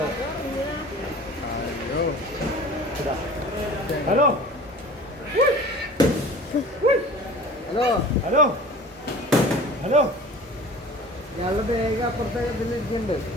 ഹലോ ഹലോ ഹലോ ഹലോ ഞങ്ങളുടെ ബാഗ് അപ്പുറത്തെ ഇതിലിരിക്കുന്നുണ്ട്.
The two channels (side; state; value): both; normal; correlation 0.42